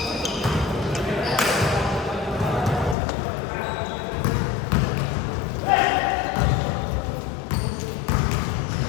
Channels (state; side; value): drops out; right; at 3.0 s